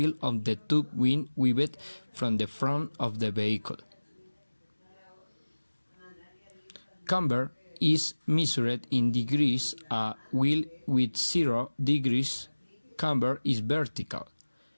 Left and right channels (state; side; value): inverted; both; correlation -1.00